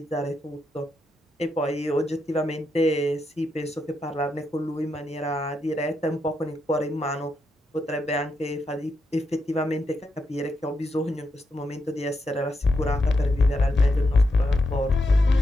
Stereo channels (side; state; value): both; normal; correlation 0.83